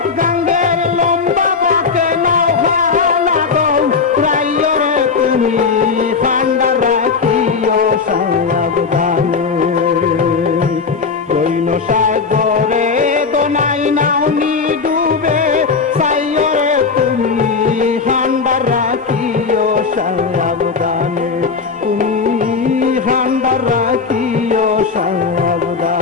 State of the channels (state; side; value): quieter; right; 5.0 dB